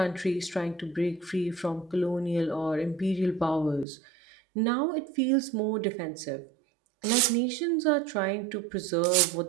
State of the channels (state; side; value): drops out; left; at 3.9 s